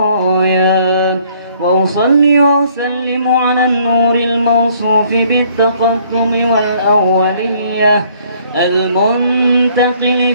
وأصلي وأسلم على النور الموصوف بالتقدم والأولية المنتقل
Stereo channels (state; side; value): inverted; both; correlation -0.61